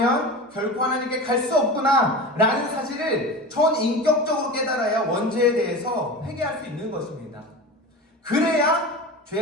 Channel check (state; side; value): normal; both; correlation 0.30